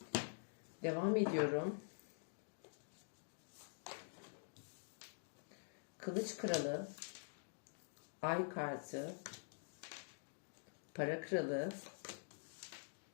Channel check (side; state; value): right; silent; digital silence